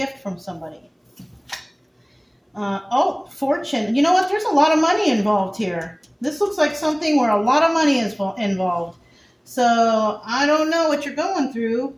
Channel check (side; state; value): both; identical; correlation 1.00